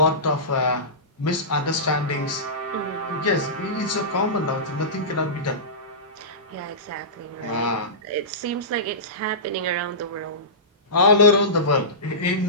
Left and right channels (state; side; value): normal; both; correlation -0.20